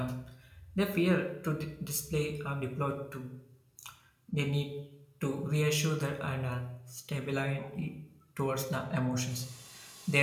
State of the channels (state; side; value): identical; both; correlation 1.00